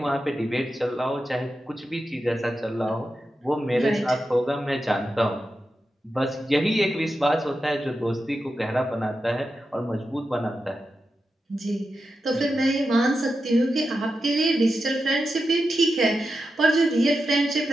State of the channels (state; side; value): normal; both; correlation 0.89